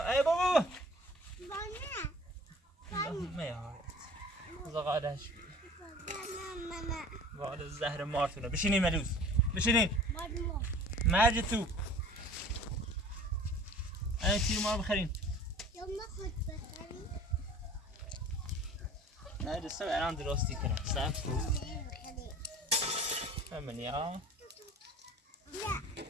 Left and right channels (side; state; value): both; normal; correlation 0.45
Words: بابا ما یا زغالش وال زهر مارتونه بشینین ملوس بشینین مرج تو این تیر ما رو بخرین نه دسته الان درستی کنم صبر کن همینی ها